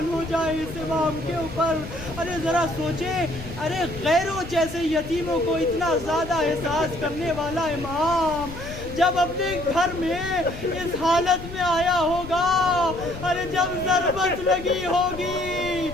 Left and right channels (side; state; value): left; noise; rumble, 12 dB below the sound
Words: ہو جائے اس امام کے اوپر. ارے ذرا سوچیں، ارے غیروں جیسے یتیموں کو اتنا زیادہ احساس کرنے والا امام جب اپنے گھر میں اس حالت میں آیا ہوگا، ارے جب ضربت لگی ہوگی،